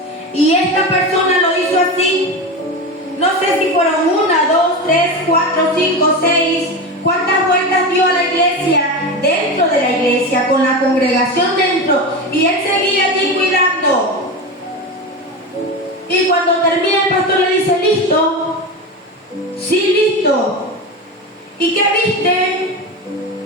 Y esta persona lo hizo así. No sé si fueron 1, 2, 3, 4, 5, 6. ¿Cuántas vueltas dio a la iglesia? Dentro de la iglesia, con la congregación dentro. Y él seguía allí cuidando. Y cuando termina el pastor le dice: ¿listo? Sí, listo. ¿Y qué viste?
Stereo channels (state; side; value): normal; both; correlation 0.22